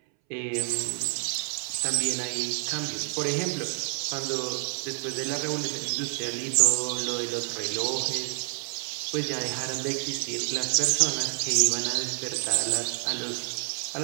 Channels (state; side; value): silent; left; 59 dB below the other